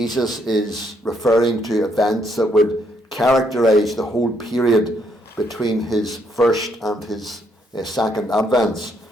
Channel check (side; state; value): both; normal; correlation 0.72